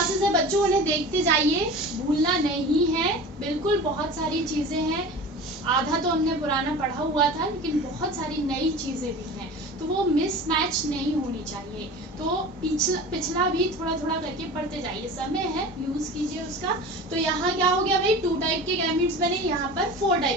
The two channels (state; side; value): normal; both; correlation 0.36